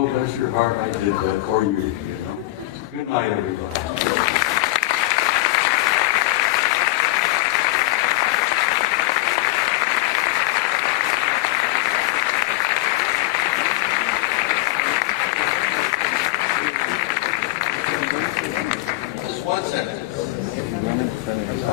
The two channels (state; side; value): quieter; right; 18.5 dB